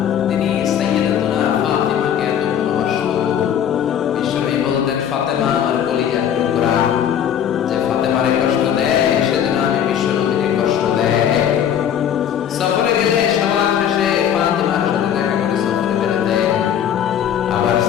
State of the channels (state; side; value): quieter; right; 9.3 dB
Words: তিনি সাইয়্যিদাতুনা ফাতিমাকে এত ভালোবাসতো। বিশ্বনবী বলতেন, ফাতেমা আমার কলিজার টুকরা, যে ফাতেমারে কষ্ট দেয় সেজন্য আমি বিশ্বনবীকে কষ্ট দেয়। সফরে গেলে সবার শেষে ফাতিমার সাথে দেখা করে সফরে বেরোতেন। আবার